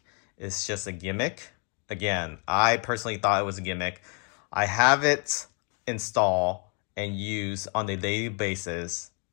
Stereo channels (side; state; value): right; quieter; 38.3 dB